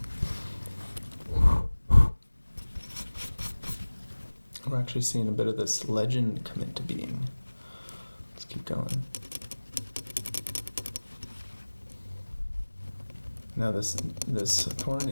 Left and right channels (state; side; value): inverted; both; correlation -1.00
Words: We're actually seeing a bit of this legend come into being. Let's keep going. Now this thorn